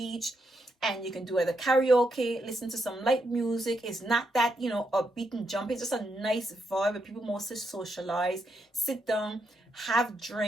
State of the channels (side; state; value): both; normal; correlation 0.80